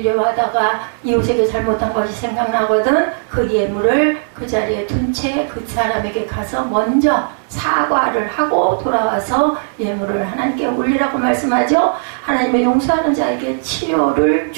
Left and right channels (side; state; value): left; silent; 60 dB below the other